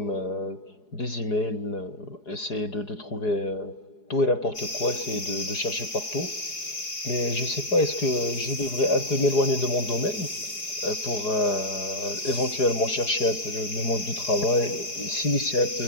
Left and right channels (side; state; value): right; late; 4.8 ms